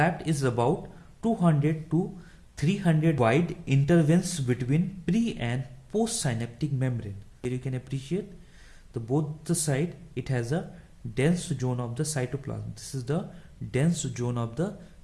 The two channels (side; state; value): both; identical; correlation 1.00